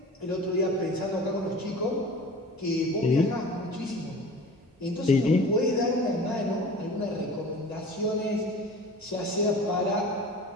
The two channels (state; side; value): normal; both; correlation 0.40